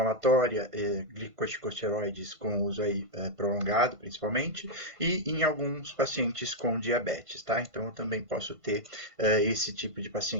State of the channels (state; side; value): late; left; 1.5 ms